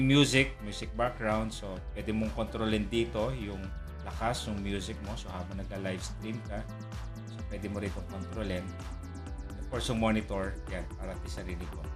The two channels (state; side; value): identical; both; correlation 1.00